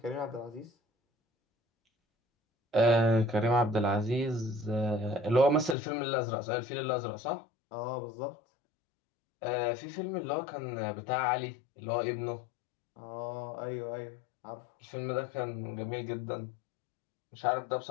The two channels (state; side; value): drops out; right; at 5.8 s